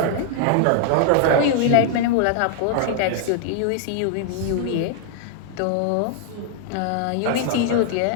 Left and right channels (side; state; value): both; different; correlation -0.01